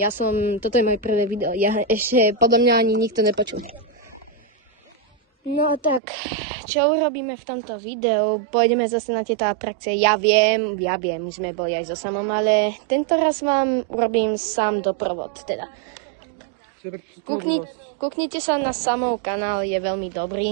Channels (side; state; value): left; drops out; at 6.0 s